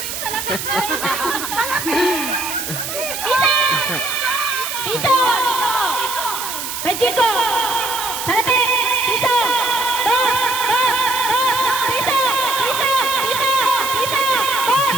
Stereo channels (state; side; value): noise; right; hiss, 6 dB below the sound